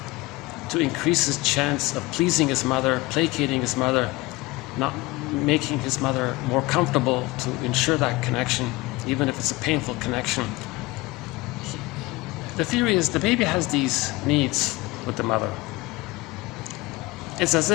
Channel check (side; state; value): right; quieter; 21.4 dB